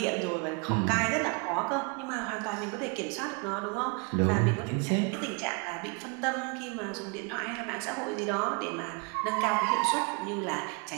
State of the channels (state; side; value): quieter; left; 32.4 dB